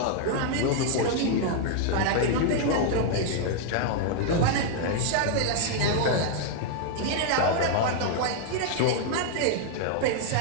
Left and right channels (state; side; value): different; both; correlation 0.00